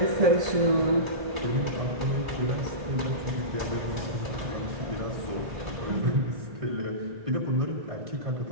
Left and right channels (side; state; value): left; late; 1.8 ms